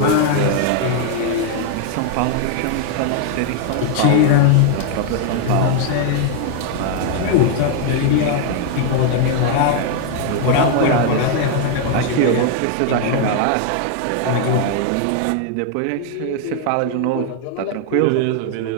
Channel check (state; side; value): different; both; correlation 0.00